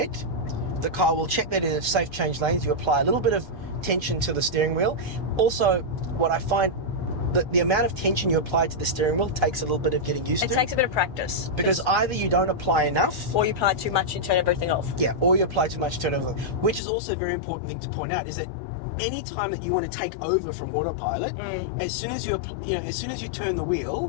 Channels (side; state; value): right; drops out; at 16.8 s